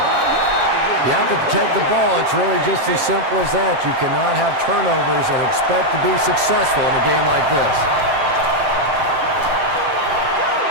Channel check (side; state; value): left; late; 7.1 ms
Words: You have to protect the ball. It's really just as simple as that. You cannot have turnovers and expect to be successful in a game like this.